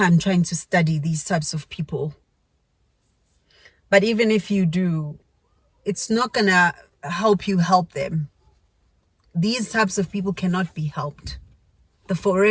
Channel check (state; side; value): identical; both; correlation 1.00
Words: trying to study these types of people. But even if you do, it's not gonna help you help them. These types of people cannot be helped. The